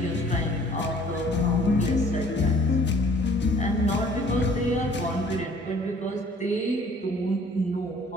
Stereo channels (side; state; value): both; normal; correlation 0.55